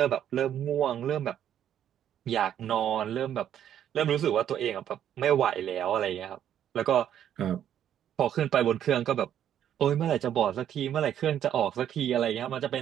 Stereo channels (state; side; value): quieter; left; 10.2 dB